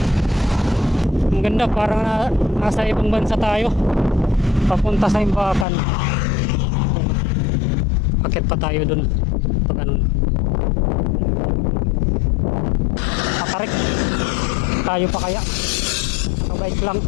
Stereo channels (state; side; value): drops out; right; at 5.7 s